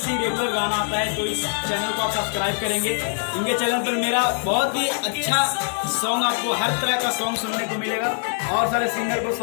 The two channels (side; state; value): right; silent; 59 dB below the other